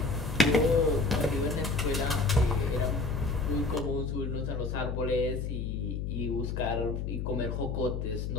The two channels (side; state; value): left; noise; hum, 3 dB below the sound